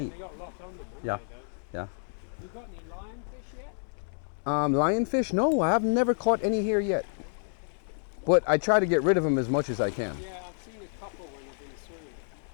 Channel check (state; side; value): silent; right; digital silence